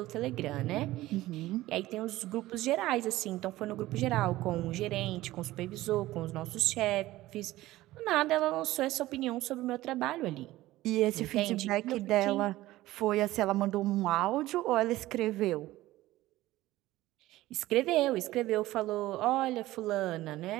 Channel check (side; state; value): left; quieter; 16.7 dB